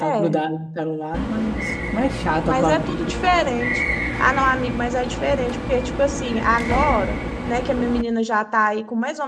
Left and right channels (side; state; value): both; identical; correlation 1.00